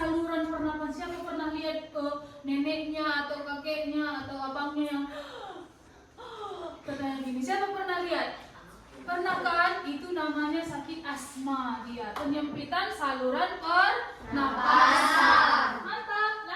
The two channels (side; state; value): both; identical; correlation 1.00